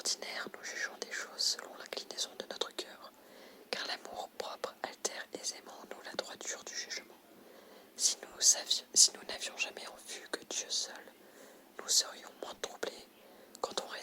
nous jugeons des choses selon l'inclinaison de notre cœur, car l'amour propre altère aisément en nous la droiture du jugement. Si nous n'avions jamais en vue que Dieu seul, nous serions moins troublés quand on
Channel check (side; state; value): both; identical; correlation 1.00